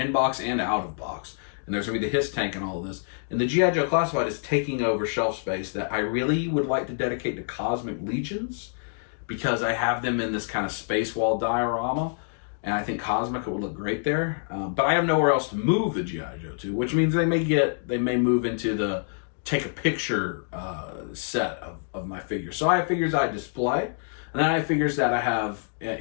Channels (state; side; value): silent; right; digital silence